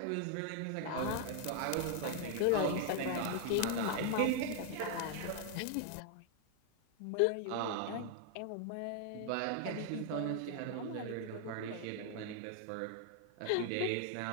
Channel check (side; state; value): both; different; correlation 0.00